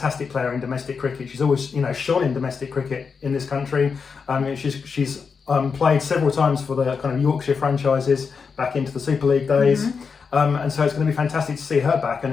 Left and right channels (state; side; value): quieter; right; 5.5 dB